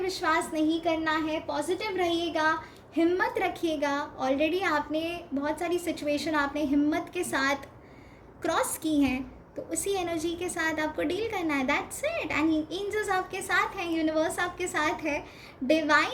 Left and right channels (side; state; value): both; identical; correlation 1.00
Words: नहीं करना है। पॉजिटिव रहिएगा, हिम्मत रखिएगा। ऑलरेडी आपने बहुत सारी सिचुएशन आपने हिम्मत के साथ क्रॉस की हैं, तो उसी एनर्जी के साथ आपको डील करना है, दैट्स इट। एंड एंजल्स आपके साथ हैं, यूनिवर्स आपके साथ है,